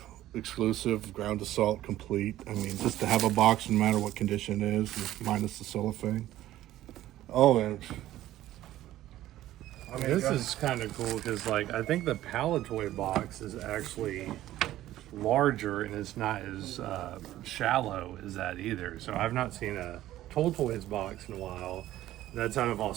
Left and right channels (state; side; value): quieter; left; 14.2 dB